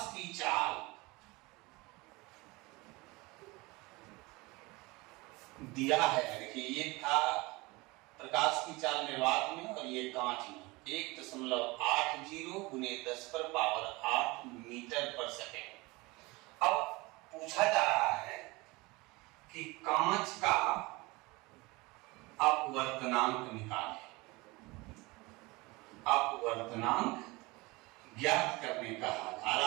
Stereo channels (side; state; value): left; quieter; 23.5 dB